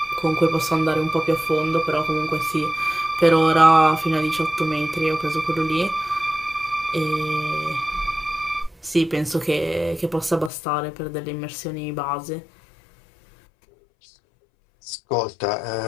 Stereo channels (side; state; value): right; drops out; at 10.5 s